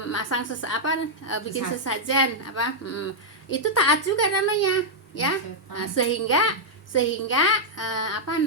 Masang bikin sesajen itu taat juga namanya ya. Nah, sehingga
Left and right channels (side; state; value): both; normal; correlation -0.05